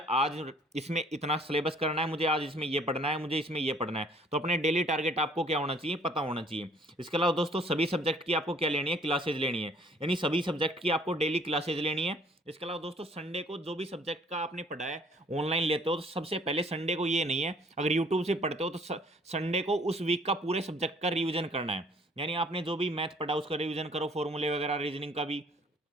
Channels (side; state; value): both; normal; correlation 0.58